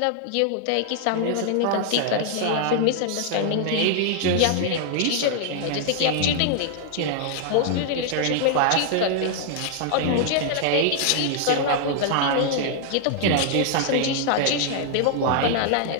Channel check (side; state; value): both; different; correlation 0.00